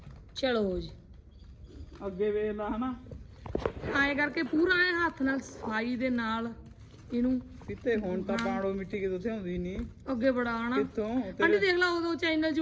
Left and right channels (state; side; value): identical; both; correlation 1.00